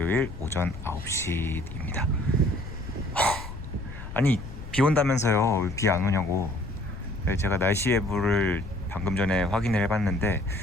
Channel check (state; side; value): noise; left; rumble, 12 dB below the sound